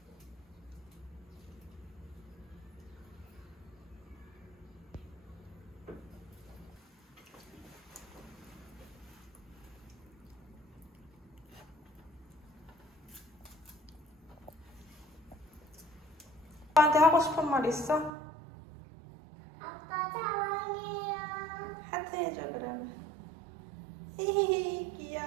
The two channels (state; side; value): drops out; left; at 18.1 s